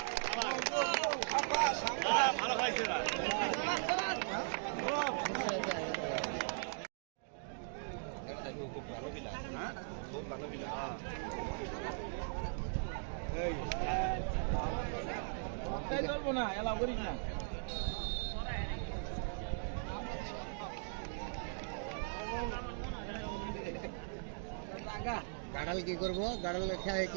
ভালো খাইছে না চলবো না এলাও করিস না গাড়াল কি করবো গাড়াল খেয়ে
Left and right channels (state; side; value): silent; left; digital silence